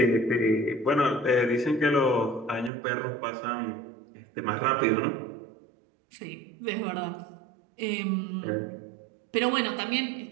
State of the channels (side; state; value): left; drops out; at 2.7 s